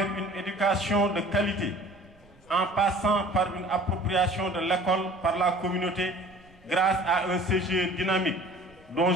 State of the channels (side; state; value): right; noise; rumble, 28 dB below the sound